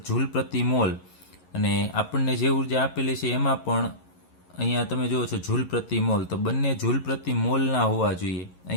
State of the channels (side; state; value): right; late; 11 ms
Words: જૂલ પ્રતિ મોલ, અને આપણને જે ઉર્જા આપેલી છે એમાં પણ અહીંયા તમે જુઓ છો જૂલ પ્રતિ મોલ, તો બંને જૂલ પ્રતિ મોલના હોવા જોઈએ.